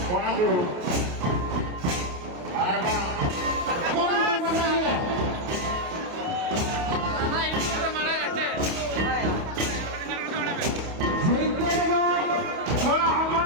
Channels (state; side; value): late; left; 28 ms